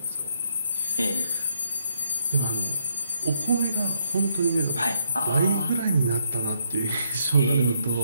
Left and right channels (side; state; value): both; inverted; correlation -0.74